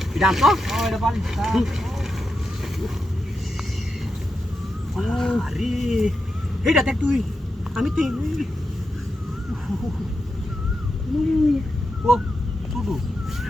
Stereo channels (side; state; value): both; normal; correlation 0.88